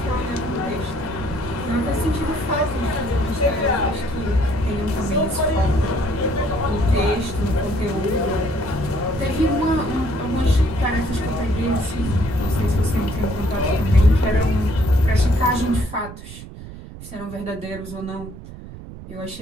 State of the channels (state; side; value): noise; right; rumble, 14 dB below the sound